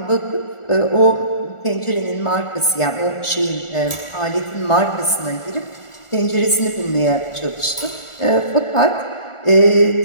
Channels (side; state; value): right; late; 1.4 ms